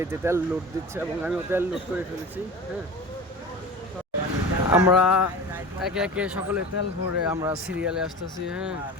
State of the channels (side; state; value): both; normal; correlation 0.34